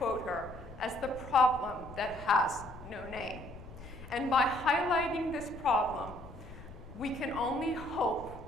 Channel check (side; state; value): left; noise; rumble, 15 dB below the sound